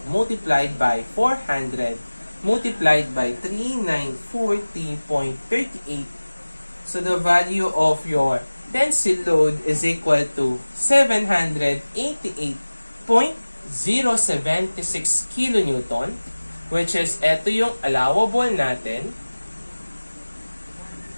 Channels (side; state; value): both; inverted; correlation -1.00